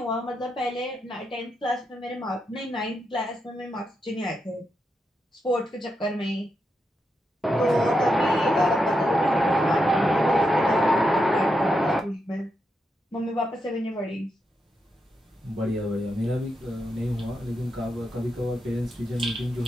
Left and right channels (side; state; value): both; normal; correlation 0.84